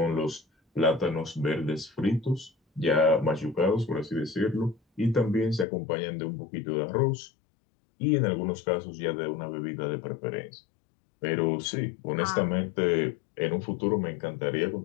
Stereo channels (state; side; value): drops out; right; at 5.7 s